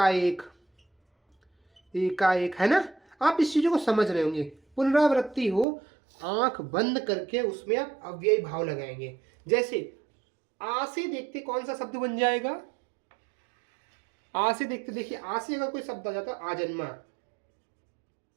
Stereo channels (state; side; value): drops out; left; at 5.7 s